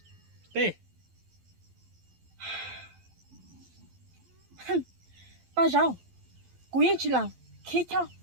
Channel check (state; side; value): late; left; 12 ms